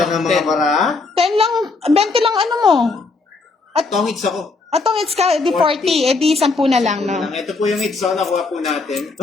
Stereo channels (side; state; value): right; quieter; 3.9 dB